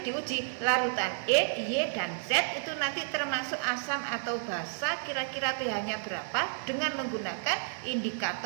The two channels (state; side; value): silent; left; digital silence